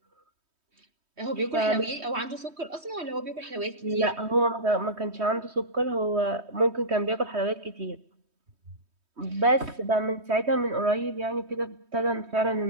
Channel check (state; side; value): late; left; 3.2 ms